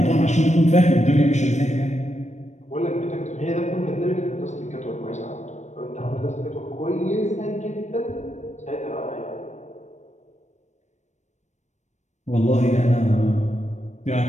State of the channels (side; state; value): right; late; 0.34 ms